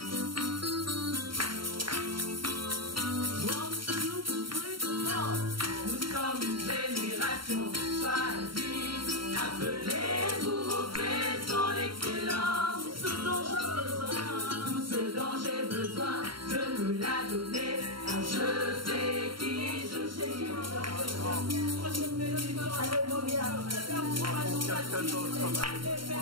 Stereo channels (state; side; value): late; left; 0.73 ms